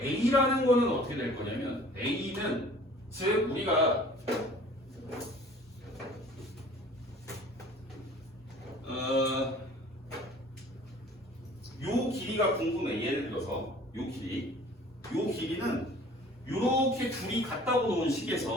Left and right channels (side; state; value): both; normal; correlation 0.49